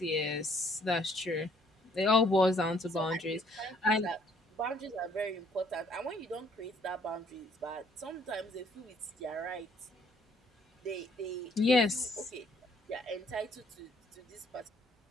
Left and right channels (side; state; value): both; normal; correlation 0.64